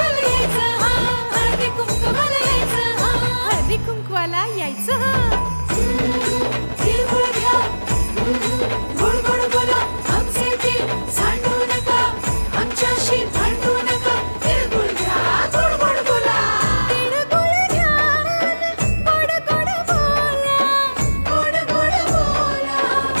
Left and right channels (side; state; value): both; inverted; correlation -1.00